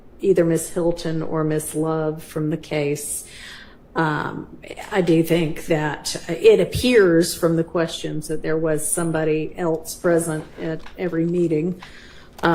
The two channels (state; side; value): identical; both; correlation 1.00